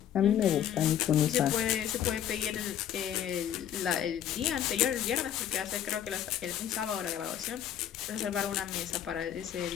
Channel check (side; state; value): right; quieter; 10.2 dB